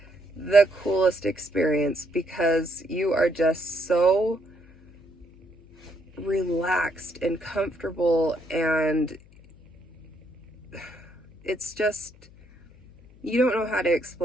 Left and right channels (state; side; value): noise; left; hum, 25 dB below the sound